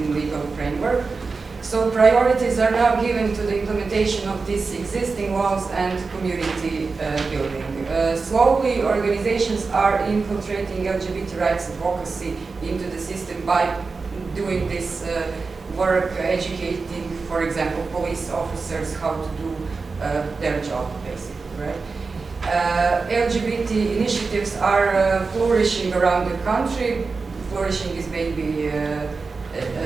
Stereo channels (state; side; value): quieter; left; 4.4 dB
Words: legal framework. So priorities are now given to the implementation of these existing laws and community building. Slowly, organizations are infiltrating LGBT rights advocacy into the system by doing this work, educating, for example, police officers how to do their job, basically, right? LGBT initiatives are flourishing around the country. Flourishing is maybe